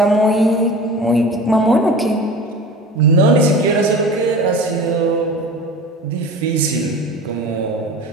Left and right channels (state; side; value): normal; both; correlation 0.36